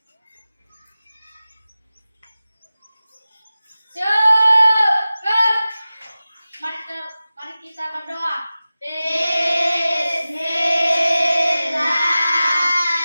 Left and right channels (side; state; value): both; inverted; correlation -0.96